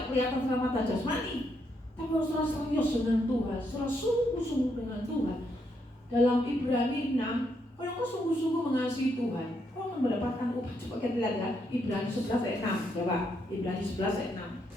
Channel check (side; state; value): both; normal; correlation 0.77